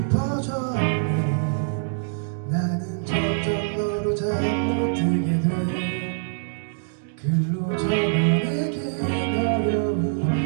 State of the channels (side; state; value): left; silent; digital silence